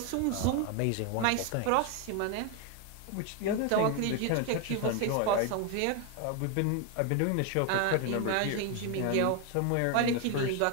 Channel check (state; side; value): different; both; correlation 0.01